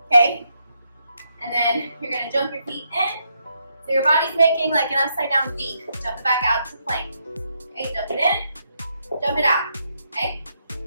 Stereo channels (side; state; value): both; inverted; correlation -0.79